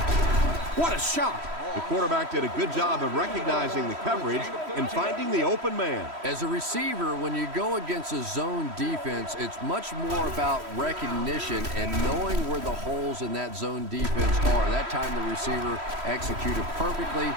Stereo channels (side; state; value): left; late; 3.1 ms